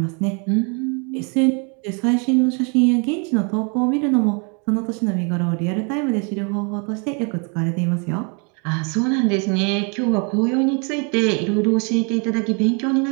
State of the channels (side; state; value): left; quieter; 35.6 dB